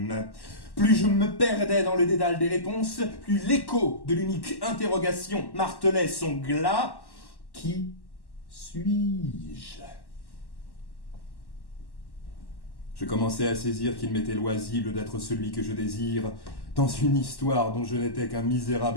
Plus je me perdais dans le dédale des réponses, plus l'écho de l'unique interrogation martelait son glas. Qui suis-je? Je commençais à saisir qu'il m'était loisible d'être celui que je désire, dans une histoire dont je n'étais qu'un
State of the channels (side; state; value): right; late; 1.1 ms